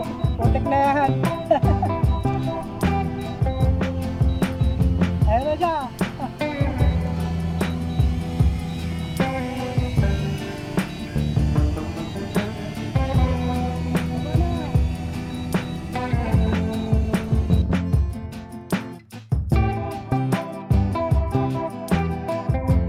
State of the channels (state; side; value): identical; both; correlation 1.00